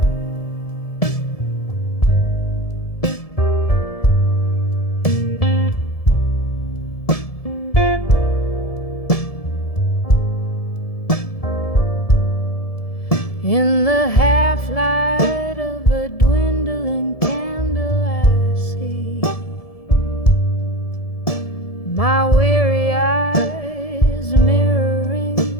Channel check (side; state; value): right; late; 1.7 ms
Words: In the half-light of a dwindling candle I see my weary eyes